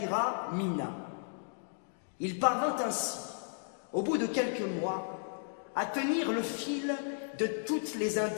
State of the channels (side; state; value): right; silent; digital silence